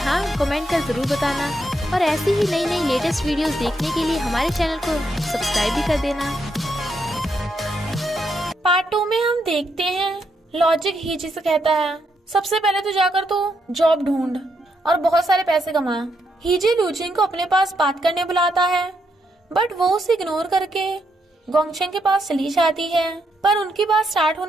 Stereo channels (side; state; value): both; normal; correlation 0.79